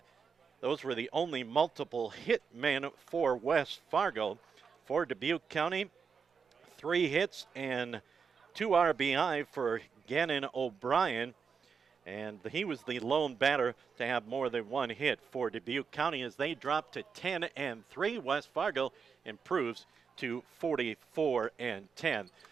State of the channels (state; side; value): quieter; left; 6.0 dB